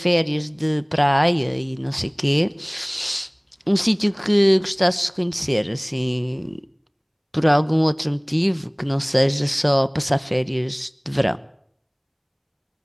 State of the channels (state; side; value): identical; both; correlation 1.00